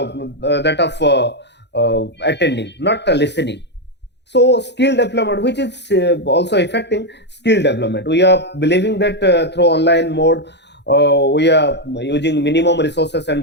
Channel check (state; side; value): late; right; 0.50 ms